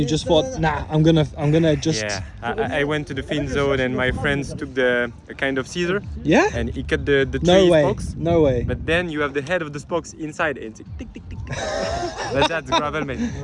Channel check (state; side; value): identical; both; correlation 1.00